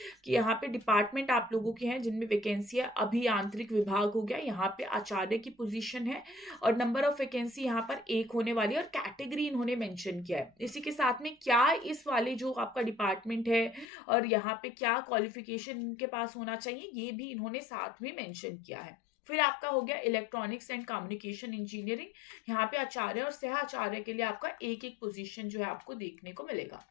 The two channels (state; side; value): drops out; right; at 13.9 s